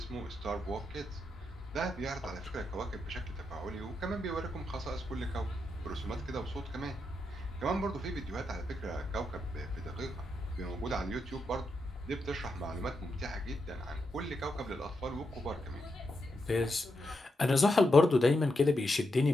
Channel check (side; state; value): both; normal; correlation 0.84